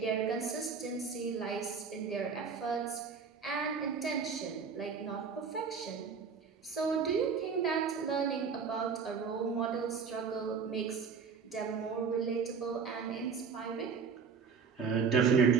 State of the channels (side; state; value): left; quieter; 5.8 dB